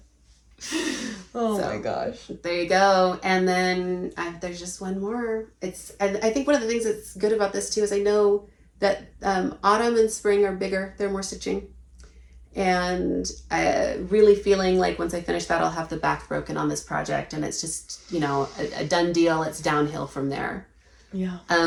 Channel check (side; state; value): both; identical; correlation 1.00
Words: Oh my gosh. There you go. And then there's just one more. And I think one of the things that's good about this too is I know that autumn and spring are bigger. They're more stitching. And really feeling like once I finish that, I'll have the back broken on this project. And it's just, you know, a done deal. It's downhill from there. Yeah.